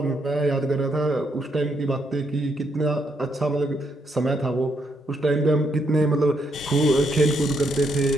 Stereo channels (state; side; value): normal; both; correlation 0.76